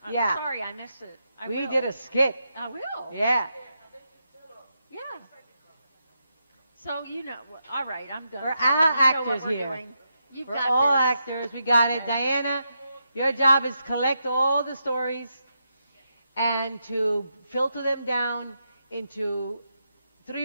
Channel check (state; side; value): inverted; both; correlation -0.83